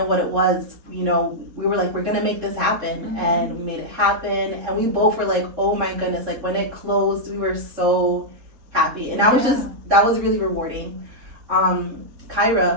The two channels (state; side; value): late; left; 4.2 ms